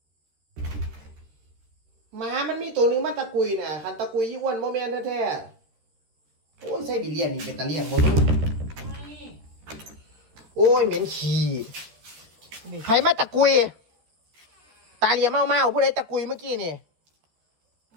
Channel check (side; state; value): left; late; 13 ms